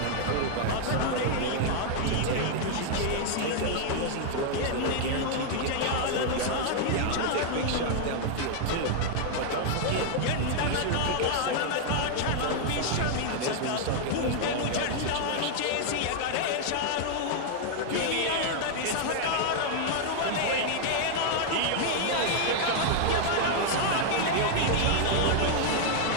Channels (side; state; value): both; different; correlation 0.00